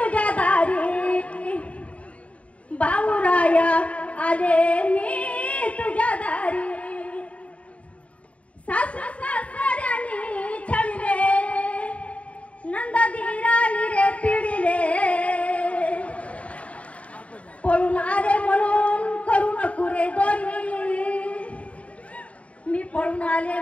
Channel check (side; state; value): right; late; 0.065 ms